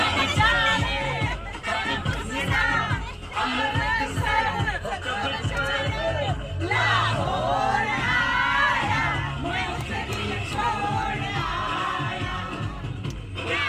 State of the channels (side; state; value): both; identical; correlation 1.00